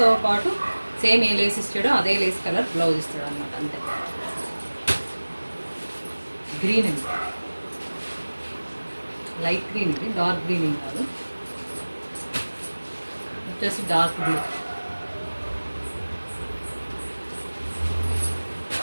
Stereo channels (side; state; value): both; inverted; correlation -1.00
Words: పాటు సేమ్ ఏ లేస్ ఇస్తాడో అదే లేస్ కలర్ బ్లౌజ్ ఇస్తాడు అనమాట. అంతే. గ్రీన్ అండి, లైట్ గ్రీన్ ఇది, డార్క్ గ్రీన్ ఏం కాదు. వచ్చేసి డార్క్ బ్లూ.